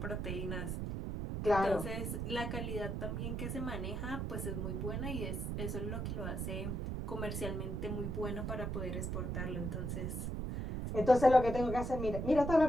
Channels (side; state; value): right; noise; rumble, 2 dB below the sound